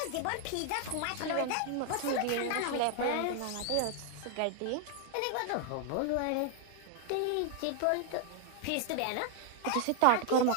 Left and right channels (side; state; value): both; different; correlation 0.00